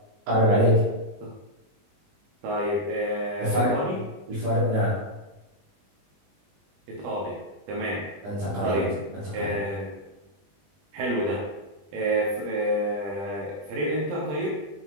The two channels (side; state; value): left; late; 20 ms